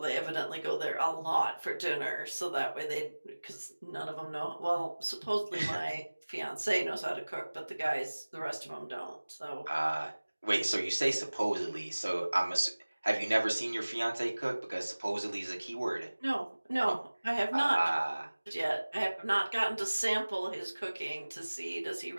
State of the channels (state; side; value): inverted; both; correlation -1.00